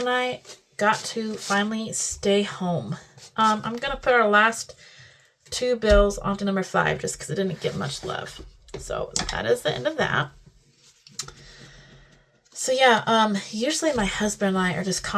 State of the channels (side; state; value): both; identical; correlation 1.00